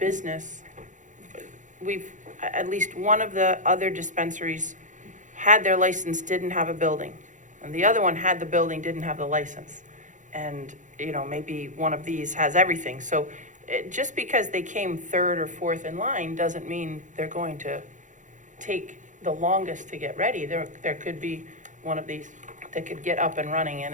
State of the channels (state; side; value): late; left; 0.36 ms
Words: at least one of the other dispensaries had their license, didn't have a building. And the other one had the building, didn't have the license. And, maybe one of these has everything. So just because they came third or fourth in line doesn't mean they're going to take the longest to get ready. There could be one of these that could get up and running